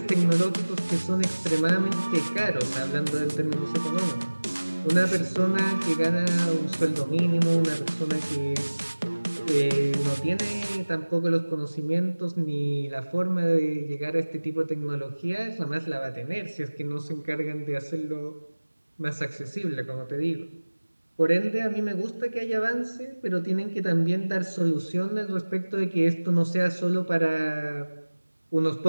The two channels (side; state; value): both; inverted; correlation -1.00